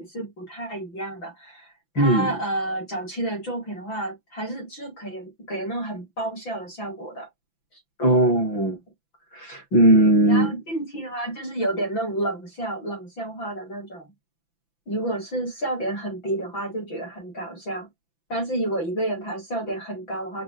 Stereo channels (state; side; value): late; right; 5.9 ms